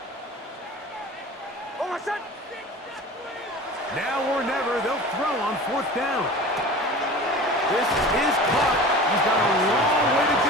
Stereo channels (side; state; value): both; normal; correlation 0.37